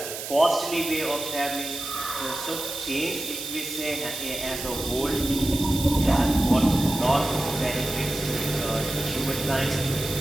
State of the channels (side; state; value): right; noise; hiss, 8 dB below the sound